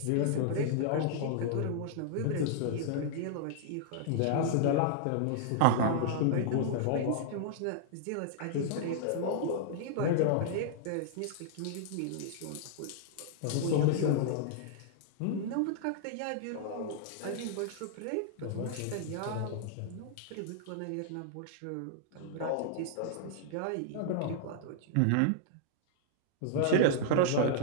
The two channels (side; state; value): both; different; correlation -0.01